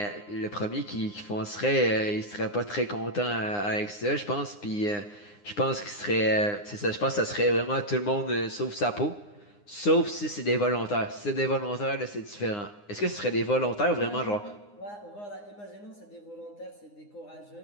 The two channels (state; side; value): late; right; 9.8 ms